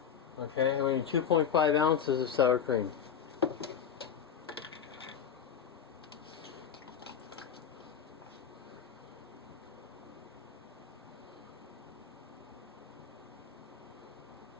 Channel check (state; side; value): quieter; right; 7.8 dB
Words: Okay, and we need 2.5 ounces of sour cream.